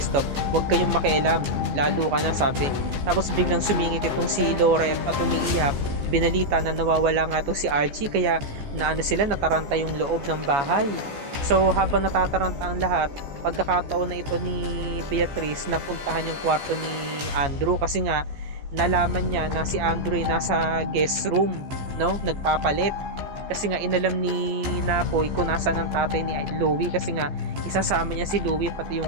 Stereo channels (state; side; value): late; left; 14 ms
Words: huwag kayong makialam, lalo ka na, sabi. Tapos biglang sumingit itong si Laura at umiiyak. Binalita na nawawala nga itong si Archie, kaya nataranta yung loob ng bahay. So habang natataranta ang lahat, pagkakataon na ito ni Beatrice na puntahan yung kwarto ni Andrew kasi nga nalaman niya na si Andrew ay nasa guest room, no, nagpapalit. Kasi nga inalam ni Napoy kung nasaan ang tatay ni Louie, kasi nga isasama niya si Louie pati